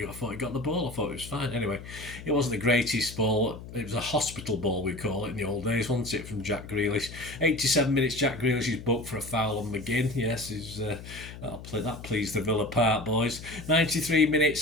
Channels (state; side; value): noise; left; hum, 13 dB below the sound